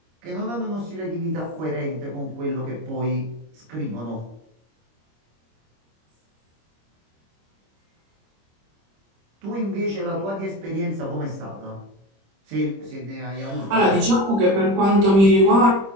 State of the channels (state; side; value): late; left; 25 ms